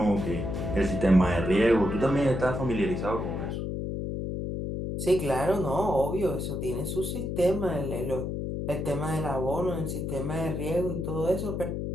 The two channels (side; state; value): left; noise; hum, 3 dB below the sound